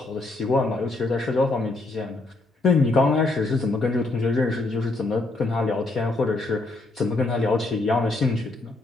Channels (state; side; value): quieter; right; 3.1 dB